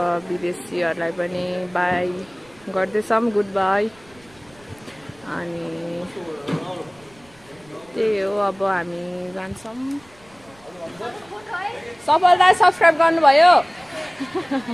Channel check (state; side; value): noise; right; rumble, 28 dB below the sound